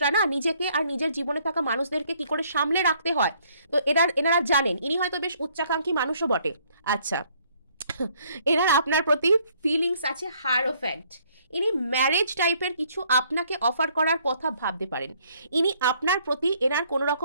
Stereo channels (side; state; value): both; inverted; correlation -0.64